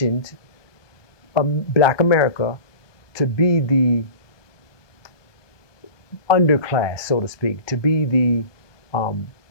Black America to be the underclass, so to speak, to be the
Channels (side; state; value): right; late; 1.2 ms